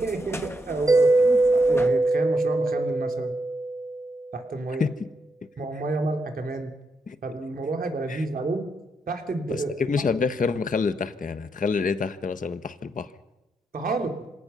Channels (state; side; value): normal; both; correlation 0.81